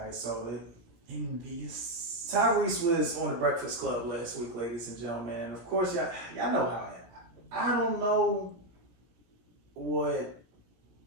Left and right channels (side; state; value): left; late; 17 ms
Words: So Envious. Tyrese was on the Breakfast Club last week, ladies and gentlemen, and of course y'all know how I don't know what